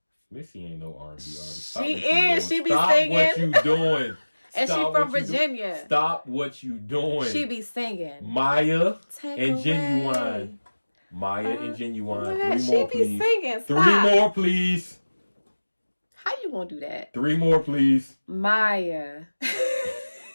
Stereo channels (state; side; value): inverted; both; correlation -1.00